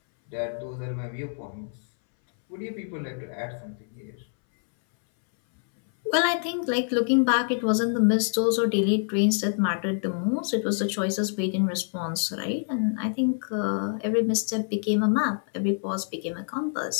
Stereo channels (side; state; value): right; silent; 61 dB below the other